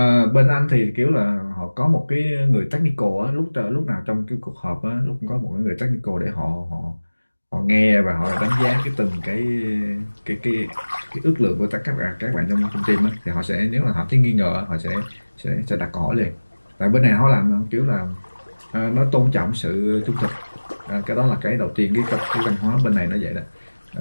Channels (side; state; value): both; inverted; correlation -1.00